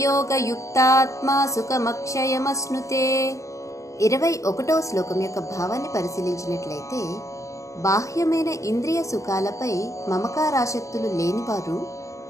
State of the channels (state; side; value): late; right; 0.15 ms